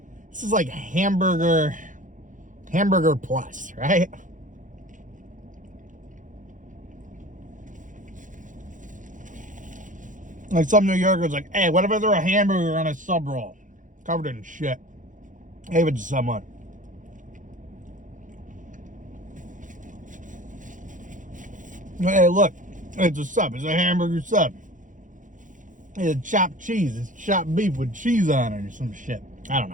hamburger plus, right? Like some New Yorker's like, hey, what if I throw a hamburger on a sub roll? Covered in shit. Gave it to someone. Hey, look, it's a sub. It's a hamburger sub. It's chopped cheese. It's chopped beef with cheese on it or some shit. I don't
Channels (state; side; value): late; left; 0.37 ms